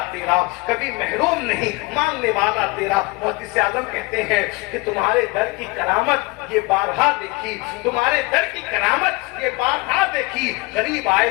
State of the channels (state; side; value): quieter; right; 24.8 dB